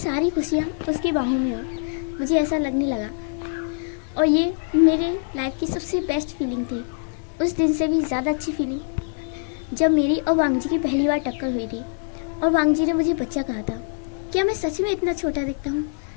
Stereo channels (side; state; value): right; silent; 61 dB below the other